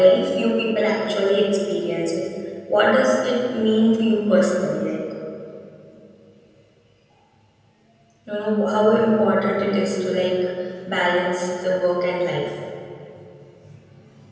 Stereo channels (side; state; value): both; identical; correlation 1.00